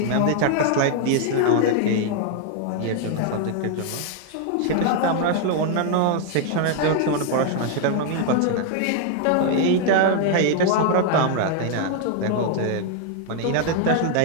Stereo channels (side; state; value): both; different; correlation 0.00